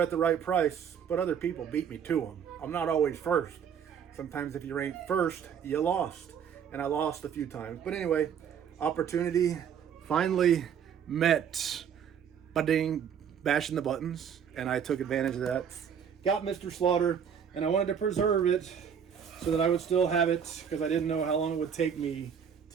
at the right price, but other people beat me to them. I'm not always first. Sometimes if you ain't first, you lost. And I lost a few times. But anyway, opportunity finally met. Ba-ding, bashing the buttons. And I took advantage of that. Got Mr. Slaughter, and I wanted to preserve it so that I would still have it because I didn't know how long it would take me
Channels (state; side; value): quieter; left; 7.8 dB